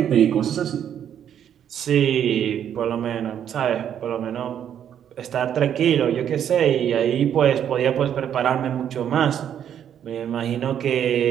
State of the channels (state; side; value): quieter; left; 9.4 dB